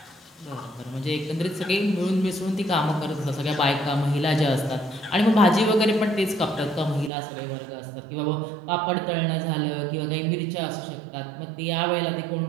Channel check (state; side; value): drops out; left; at 7.1 s